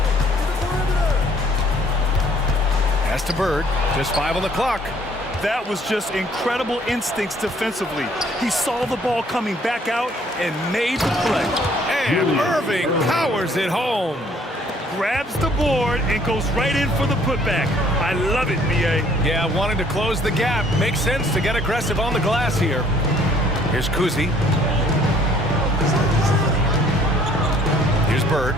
Pass to Bird. Just 5 on the clock. That was just incredible instincts defensively. He saw the ball coming back out and made the play. And Irving powers it home. Grabs the board and goes right in for the putback. I love it, B.A. Yeah, wanting to close the gap. Makes sense to get aggressive on the glass here. Here's Kuzi. Here's Bird.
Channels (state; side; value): normal; both; correlation 0.60